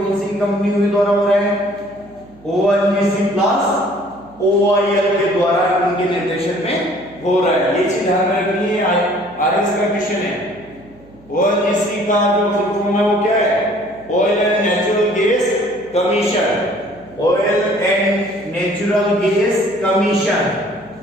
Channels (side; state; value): right; noise; hum, 26 dB below the sound